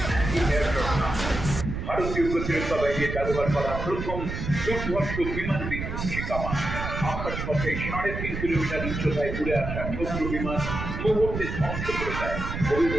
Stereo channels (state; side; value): noise; right; rumble, 5 dB below the sound